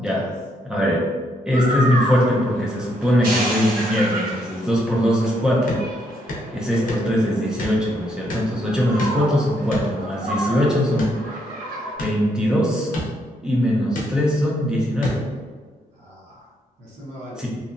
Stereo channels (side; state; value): both; normal; correlation 0.75